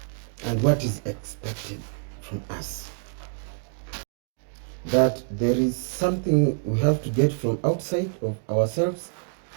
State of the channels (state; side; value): silent; left; digital silence